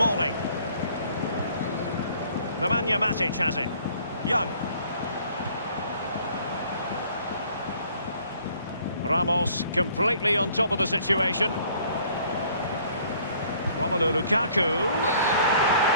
Nemanja Matic has it. Young. Ramos completely on top of the situation. Romelu Lukaku.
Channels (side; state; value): both; inverted; correlation -0.58